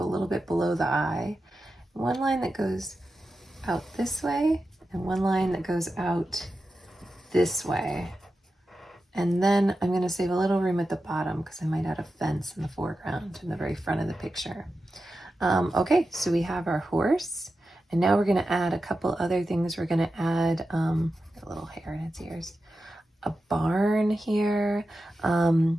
bit below the eye. 1 line that goes out this way and 1 line that goes out this way. And then I'm going to save a little room at the bottom because I might add a fence in the foreground in the very front of the picture. Okay, so we have our horse, and now we're going to add a couple other things. We're going to add a little hair in its ears, a barn here.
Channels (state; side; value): normal; both; correlation 0.91